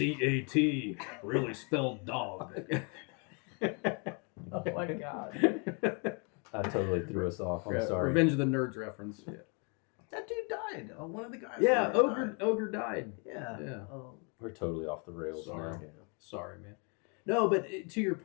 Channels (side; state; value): right; quieter; 35.2 dB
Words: really spelled dog? Oh my god. I totally threw us off. I'm sorry. Revenge of the Nerds reference. Yeah. That dude died. One of the guys. Yeah, died. Ogre died. Yeah. Yeah. We're totally off the rails Sorry. now. Sorry, man. No, but to your